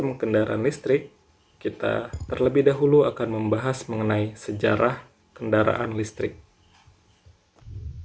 Kendaraan Listrik, kita terlebih dahulu akan membahas mengenai sejarah kendaraan listrik.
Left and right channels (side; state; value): both; identical; correlation 1.00